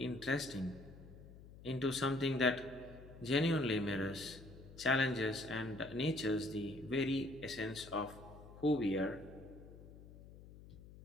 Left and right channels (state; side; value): noise; left; hum, 17 dB below the sound